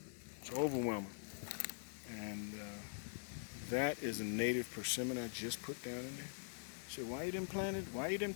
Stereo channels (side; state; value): right; silent; digital silence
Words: So overwhelm it. And that is a native persimmon I just put down in there. Say, why you didn't plant it? Why you didn't